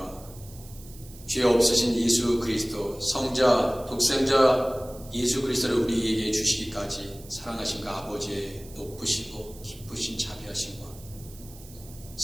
죄 없으신 예수 그리스도, 성자, 독생자 예수 그리스도를 우리에게 주시기까지 사랑하신가 아버지의 높으시고 기쁘신 자비하심과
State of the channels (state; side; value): noise; right; hiss, 20 dB below the sound